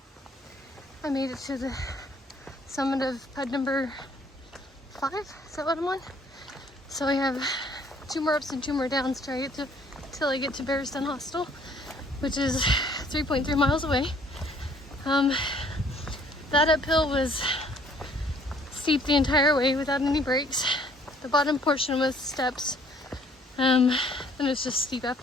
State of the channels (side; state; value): both; normal; correlation 0.60